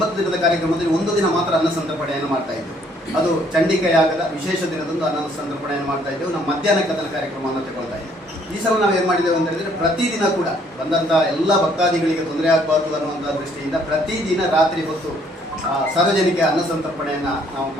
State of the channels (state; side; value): normal; both; correlation 0.64